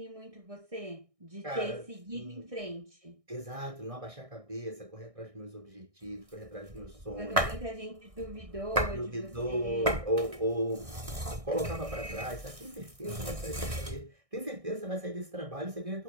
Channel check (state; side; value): late; left; 1.6 ms